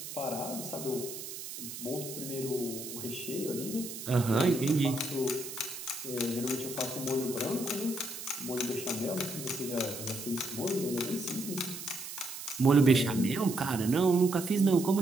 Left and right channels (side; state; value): right; noise; hiss, 9 dB below the sound